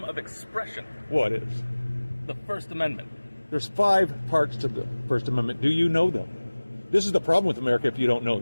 of expression. What is? The First Amendment. There's 5 parts to the First Amendment. Do you know them? This is the problem with America if you don't know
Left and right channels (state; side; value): inverted; both; correlation -1.00